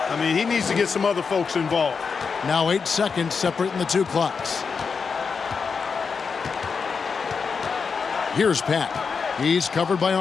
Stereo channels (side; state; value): right; quieter; 5.5 dB